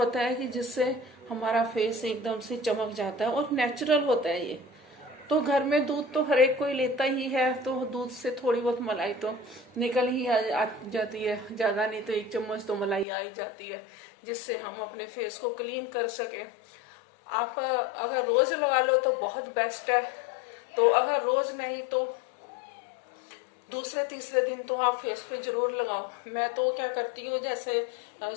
है कि जिससे हमारा फेस एकदम से चमक जाता है और नेचुरल होता है ये। तो घर में दूध तो हर एक कोई लेता ही है, तो दूध से थोड़ी बहुत मलाई तो निकल ही आ जाती है, ज्यादा नहीं तो 1 चम्मच तो मलाई आ ही जाती है, जिससे हम अपने फेस को क्लीन कर सके। आप अगर रोज लगा लो तो बहुत बेस्ट है, तो अगर रोज नहीं तो दूसरे तीसरे दिन तो आप फेस पे जरूर लगाओ। मैं तो क्या करती हूँ, जैसे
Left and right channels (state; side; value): drops out; right; at 13.1 s